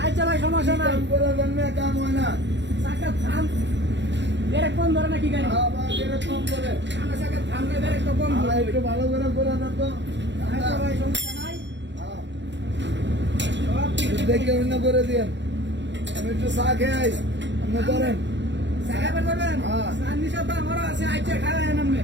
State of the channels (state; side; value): late; left; 0.52 ms